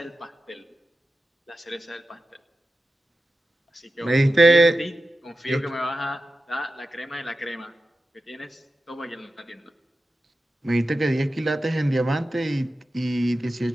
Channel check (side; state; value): both; normal; correlation 0.93